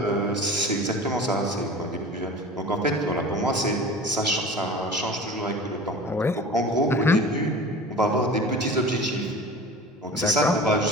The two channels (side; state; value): both; normal; correlation 0.38